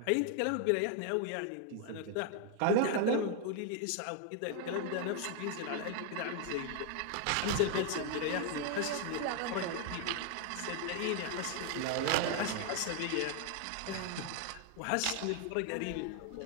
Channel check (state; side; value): different; both; correlation 0.00